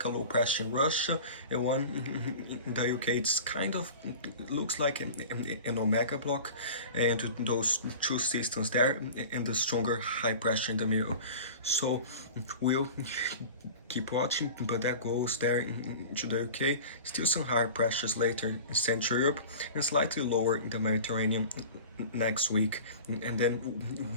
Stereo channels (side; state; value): both; inverted; correlation -0.37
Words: a low pressure in Russia and one in the UK. It's kind of looks like an omega block, and those two systems there and the stronger high pressure in the middle. So we'll keep watching, but that goes there into the UK. Still some higher pressures later in Central Europe and slightly lower in the Mediterranean next week, and then